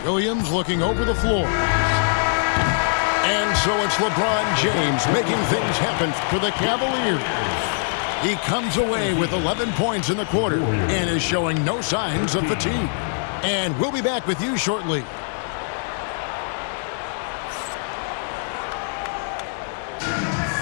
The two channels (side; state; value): right; silent; digital silence